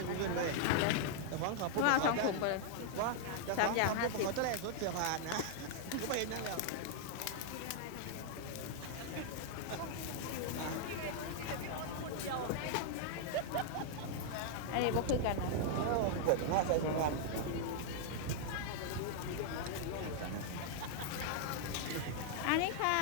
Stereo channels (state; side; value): different; both; correlation -0.01